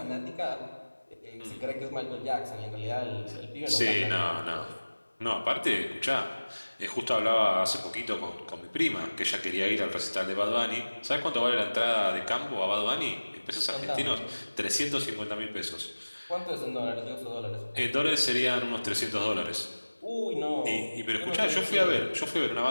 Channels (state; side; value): inverted; both; correlation -1.00